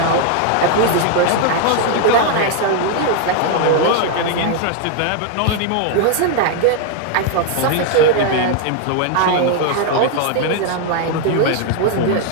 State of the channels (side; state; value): both; different; correlation 0.00